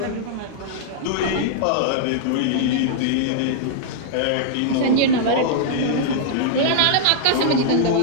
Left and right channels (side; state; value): both; different; correlation -0.02